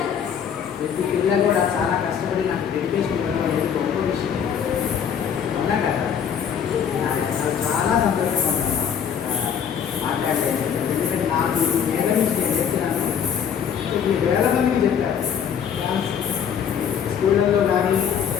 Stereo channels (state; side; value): quieter; right; 7.9 dB